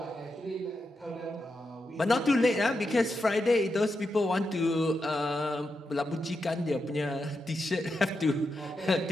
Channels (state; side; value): normal; both; correlation 0.86